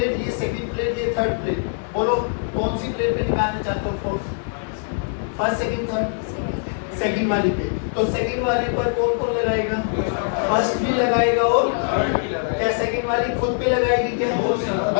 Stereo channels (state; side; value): silent; right; 64 dB below the other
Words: ये सेकंड प्लेट, ये थर्ड प्लेट, बोलो कौन सी प्लेट पे निकालना चाहते हो force, first second third, second वाली पे। तो सेकंड वाली पर कौन कौन लगाएगा, फर्स्ट भी लगाएगा और क्या सेकंड वाली खुद पे लगाएगी क्या,